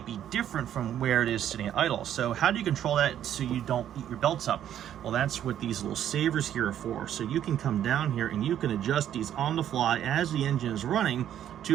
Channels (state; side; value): quieter; left; 10.6 dB